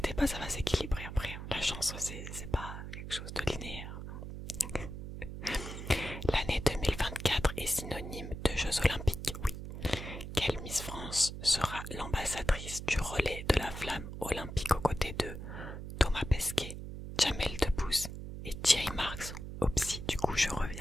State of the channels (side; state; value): right; noise; hum, 8 dB below the sound